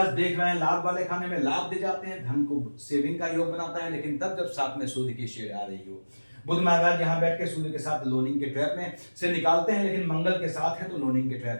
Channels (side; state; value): both; inverted; correlation -1.00